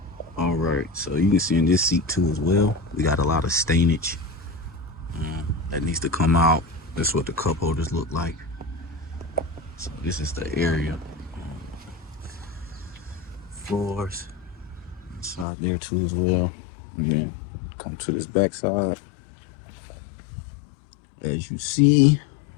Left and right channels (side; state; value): right; drops out; at 15.5 s